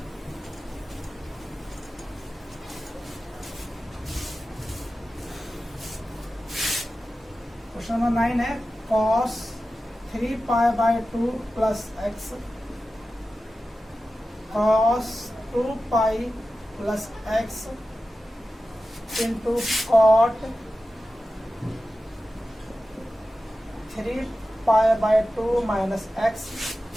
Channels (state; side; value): normal; both; correlation 0.94